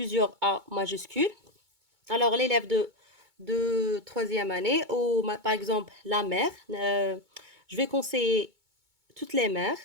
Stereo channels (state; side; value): late; left; 2.2 ms